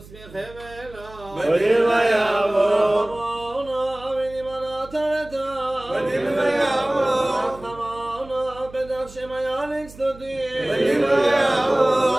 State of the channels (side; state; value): right; noise; hum, 20 dB below the sound